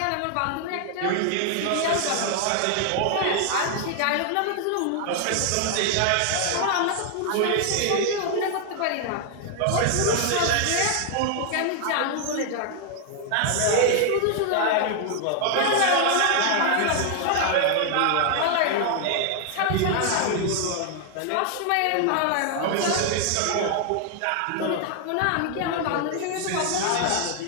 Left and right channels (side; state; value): both; different; correlation 0.00